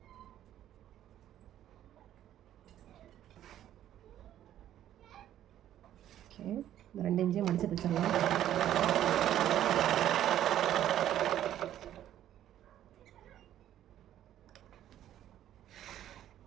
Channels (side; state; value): left; quieter; 11.7 dB